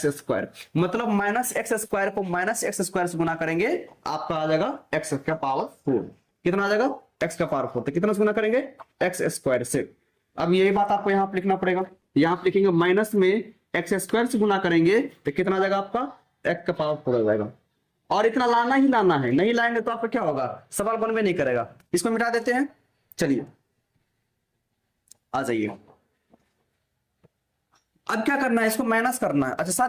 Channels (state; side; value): identical; both; correlation 1.00